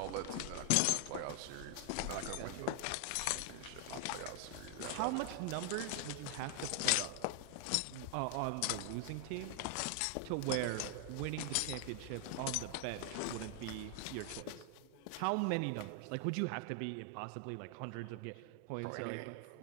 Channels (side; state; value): both; different; correlation 0.00